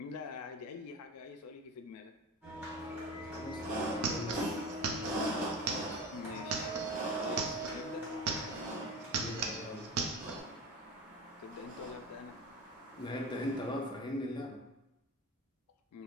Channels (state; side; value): normal; both; correlation 0.30